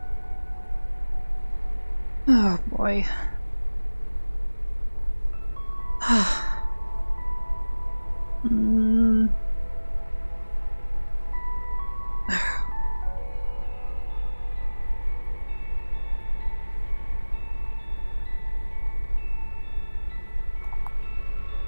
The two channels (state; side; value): inverted; both; correlation -1.00